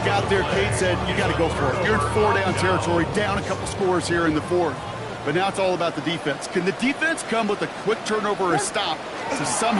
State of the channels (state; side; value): identical; both; correlation 1.00